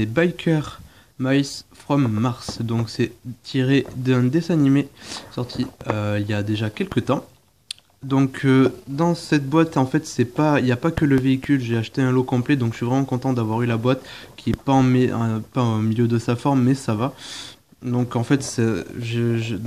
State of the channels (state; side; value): identical; both; correlation 1.00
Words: Biker Mice from Mars, donc c'est tiré d'un dessin animé sorti il y a déjà quelques temps. Donc dans cette boîte en fait c'est pas il n'y a pas que le véhicule, j'ai acheté un lot complet donc je suis vraiment content d'avoir eu la boîte qui est pas pas au milieu de sa forme mais ça va. Donc en fait